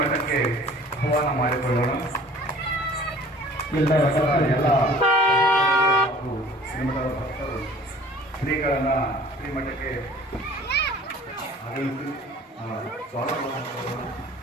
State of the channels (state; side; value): normal; both; correlation 0.49